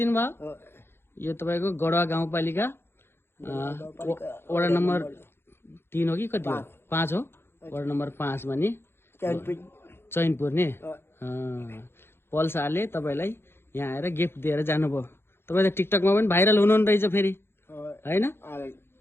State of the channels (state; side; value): late; right; 0.11 ms